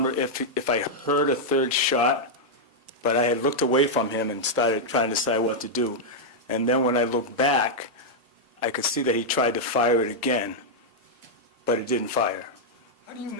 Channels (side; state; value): both; normal; correlation -0.04